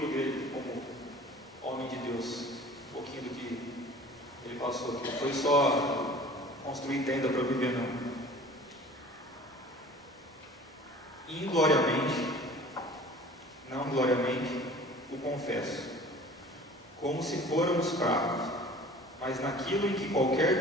dele como homem de Deus, um pouquinho do que ele passou aqui. Não foi só construir tenda para viver, não. Ingloriamente, não gloriamente, o confesso, como se fôramos fracos, mas naquilo em que qualquer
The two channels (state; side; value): normal; both; correlation 0.45